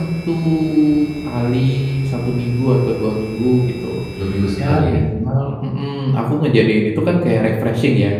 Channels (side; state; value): both; identical; correlation 1.00